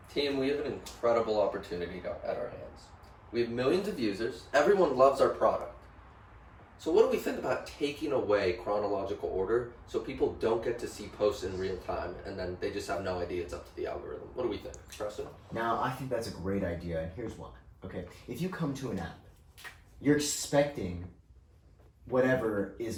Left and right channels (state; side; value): identical; both; correlation 1.00